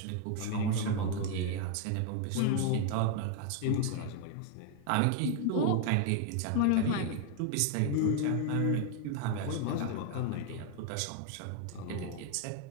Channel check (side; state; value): both; different; correlation 0.00